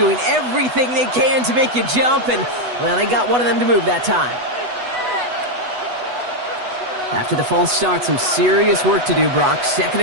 everything they can to make you jump, and, well, they got one of them to move that time. After the false start, some serious work to do, Brock. 2nd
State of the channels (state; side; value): late; left; 8.1 ms